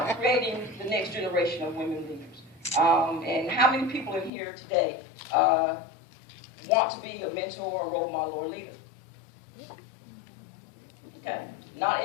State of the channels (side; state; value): right; drops out; at 4.3 s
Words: creating the next generation of women leaders. And how many people in here today want to be a mentor, a role model, or a leader? Okay, not